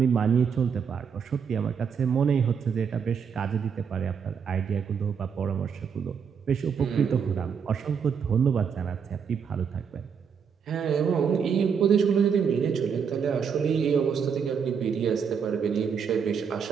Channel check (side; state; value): left; quieter; 6.7 dB